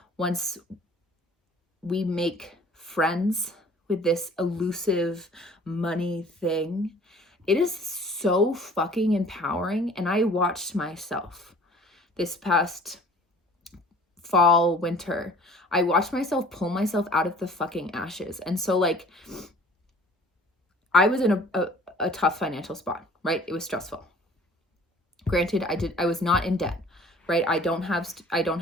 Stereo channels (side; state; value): both; normal; correlation 0.50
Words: once we make friends with this elusive money thing, it is so fucking empowering. And I watched myself this past fall, winter, I watched myself pull myself out of the fucking ashes. And so like, I was in a tough financial spot, right? It was stressful. Granted, I was not in debt, right? I don't